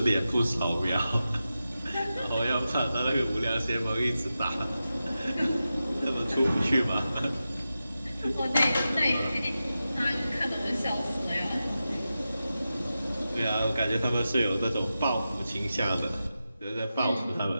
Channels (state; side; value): inverted; both; correlation -0.92